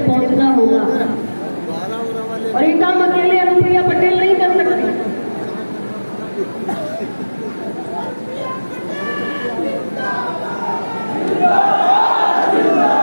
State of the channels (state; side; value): inverted; both; correlation -1.00